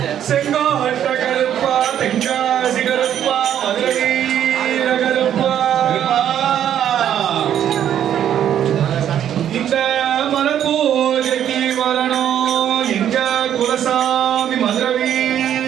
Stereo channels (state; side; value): quieter; left; 10.1 dB